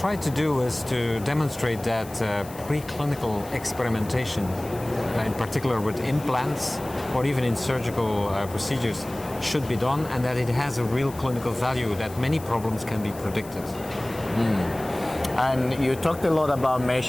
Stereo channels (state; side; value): noise; left; hiss, 19 dB below the sound